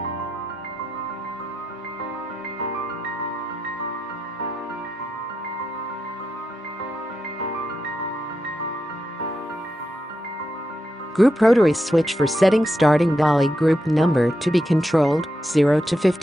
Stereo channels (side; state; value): both; normal; correlation 0.86